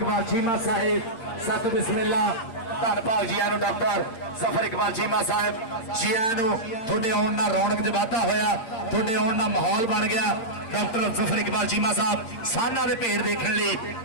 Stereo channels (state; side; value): late; right; 8.8 ms